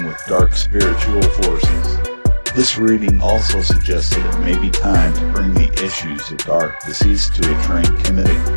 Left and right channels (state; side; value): inverted; both; correlation -1.00